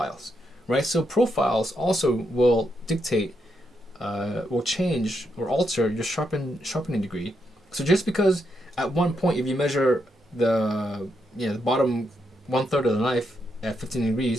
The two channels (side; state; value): both; normal; correlation 0.81